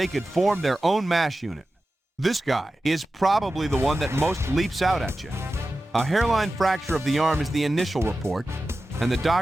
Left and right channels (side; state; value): both; normal; correlation 0.94